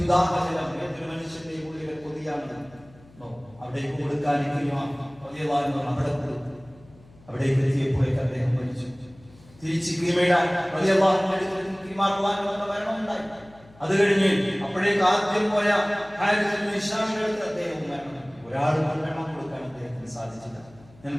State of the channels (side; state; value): left; noise; hum, 25 dB below the sound